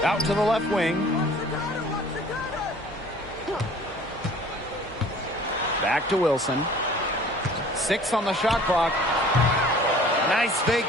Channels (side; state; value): both; normal; correlation 0.49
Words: Out to the left wing. Back to Wilson. 6 on the shot clock. Nice fake